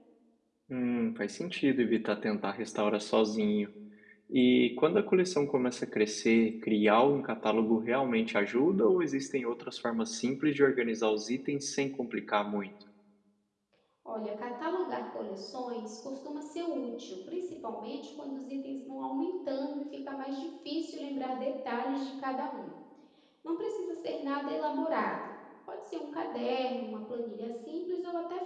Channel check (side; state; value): both; identical; correlation 1.00